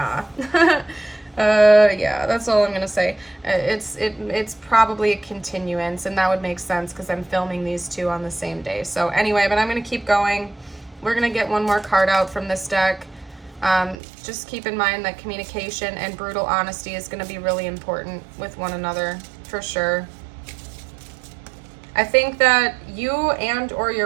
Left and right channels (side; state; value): left; drops out; at 14.0 s